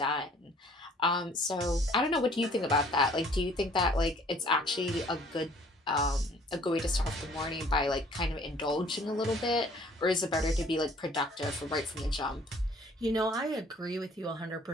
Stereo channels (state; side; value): normal; both; correlation 0.56